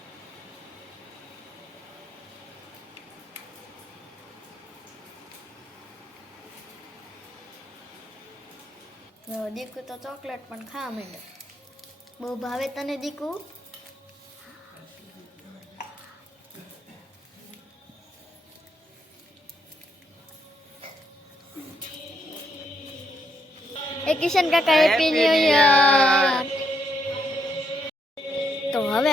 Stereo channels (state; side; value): normal; both; correlation 0.76